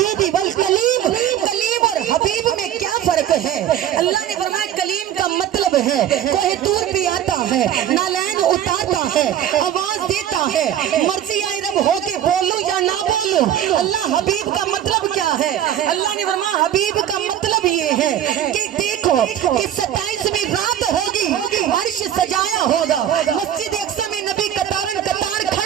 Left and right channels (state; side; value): quieter; left; 10.6 dB